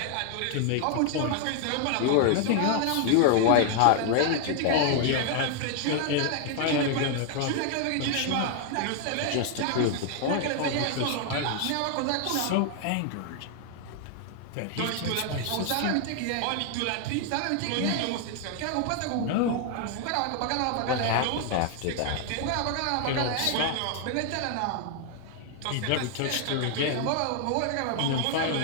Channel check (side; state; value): both; different; correlation 0.00